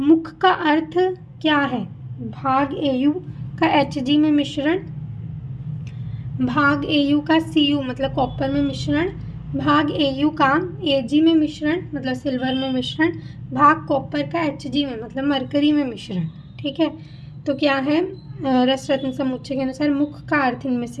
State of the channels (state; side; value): identical; both; correlation 1.00